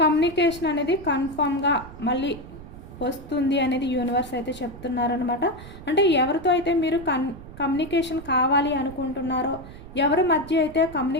కమ్యూనికేషన్ అనేది కన్ఫామ్గా మళ్ళీ వస్తుంది అనేది యూనివర్స్ అయితే చెప్తున్నారనమాట. అంటే ఎవరితో అయితే మీరు కమ్యూనికేషన్ కావాలి అనుకుంటున్నారో, ఎవరి మధ్య అయితే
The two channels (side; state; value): right; noise; rumble, 16 dB below the sound